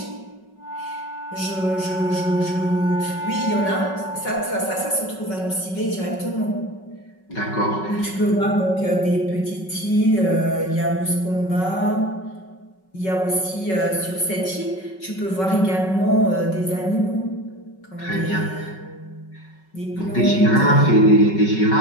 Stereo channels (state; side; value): late; right; 5.3 ms